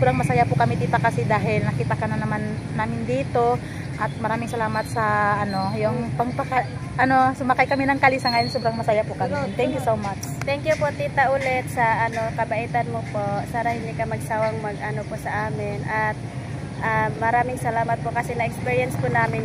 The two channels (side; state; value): both; identical; correlation 1.00